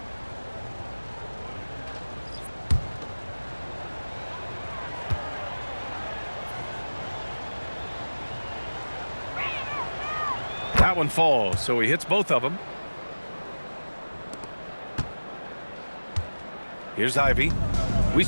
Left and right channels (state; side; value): inverted; both; correlation -1.00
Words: That one falls, so he hits both of them. Here's Ivy. We